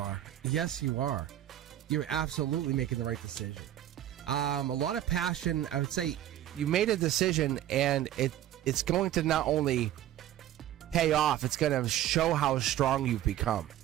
Yes, you are. You're absolutely making the right decision. A lot of passion. I would say you made a decision, and it's going to not only pay off, it's going to show how strong you've become.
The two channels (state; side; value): quieter; left; 12.4 dB